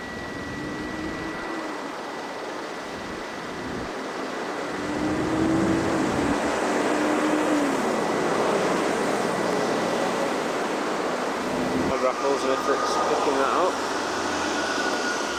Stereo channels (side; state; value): both; identical; correlation 1.00